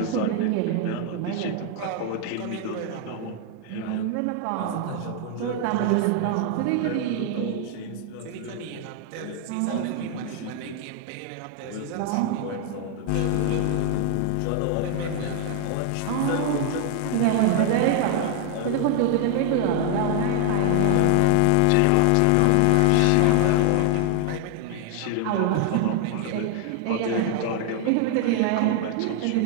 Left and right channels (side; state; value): both; different; correlation 0.00